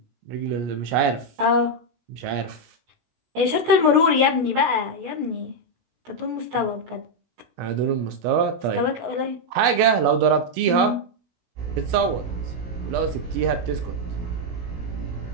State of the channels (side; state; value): left; late; 17 ms